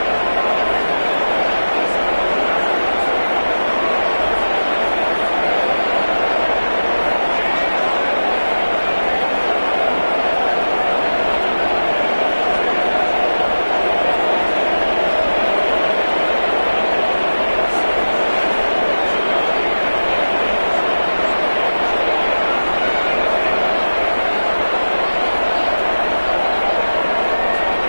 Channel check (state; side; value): inverted; both; correlation -1.00